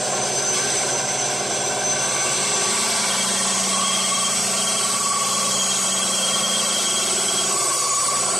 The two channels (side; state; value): both; normal; correlation 0.92